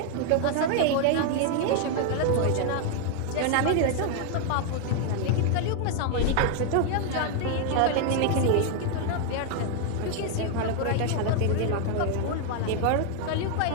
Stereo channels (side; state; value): both; different; correlation 0.01